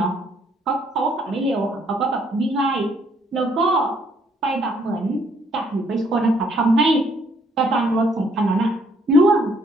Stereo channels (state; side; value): normal; both; correlation 0.67